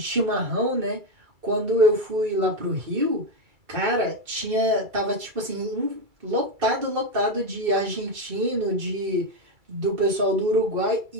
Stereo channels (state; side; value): late; left; 2.3 ms